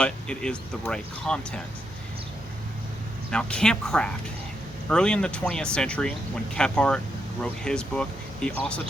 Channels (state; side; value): normal; both; correlation 0.81